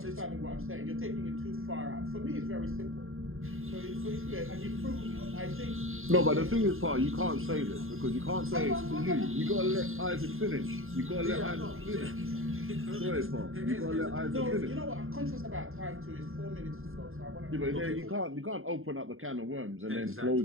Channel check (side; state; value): left; late; 0.60 ms